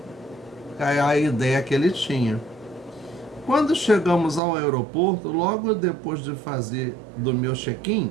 a ideia que ele tinha. Quando chegamos ao aeroporto, logo depois de fazer do meu check-in,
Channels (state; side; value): drops out; left; at 4.4 s